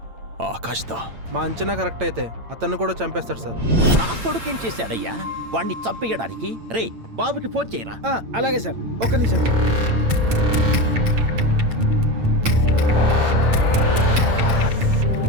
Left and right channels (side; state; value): left; late; 8.8 ms